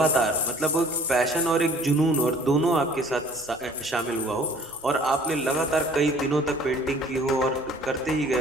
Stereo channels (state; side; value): normal; both; correlation 0.53